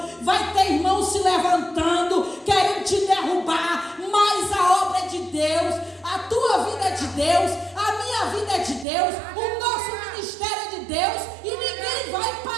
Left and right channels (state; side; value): drops out; left; at 8.8 s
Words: vai ter irmãos se levantando, querendo te derrubar. Mas a obra é de Deus, a tua vida é de Deus, a minha vida é de Deus, o nosso ministério é de Deus e ninguém vai